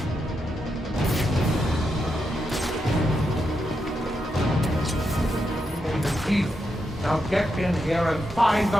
In the teeth. Now get in here and find the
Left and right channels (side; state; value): both; normal; correlation 0.84